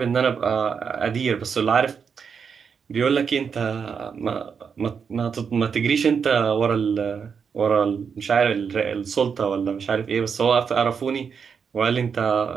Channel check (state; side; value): quieter; left; 6.4 dB